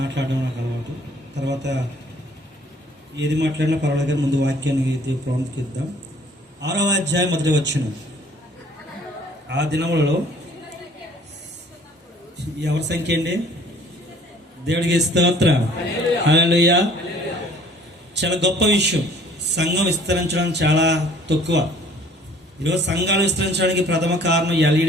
నాకు అలవాటు. తర్వాత ఏది మాట్లాడినా పర్వాలేదు, ముందు వాక్యాన్ని ప్రాముఖ్యత. 6వ అధ్యాయం మొదటి వచనం. ఆ దినములలో ఎవరి సంఖ్య అండి? దేవుడికి స్తోత్రం, హల్లెలూయా. చాలా గొప్ప విషయం. సంఘం విస్తరించడం చాలా తక్కువ. ఈరోజు సంఘాలు విస్తరించడానికి ప్రథమ కారణం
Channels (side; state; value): both; normal; correlation 0.56